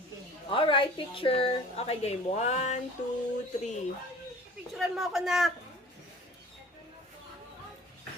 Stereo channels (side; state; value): both; normal; correlation 0.45